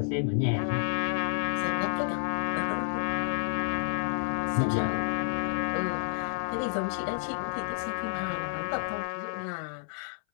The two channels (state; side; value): silent; right; 58 dB below the other